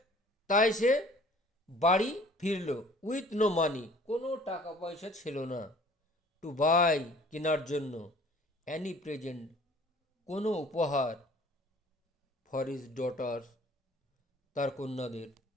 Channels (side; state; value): both; normal; correlation 0.51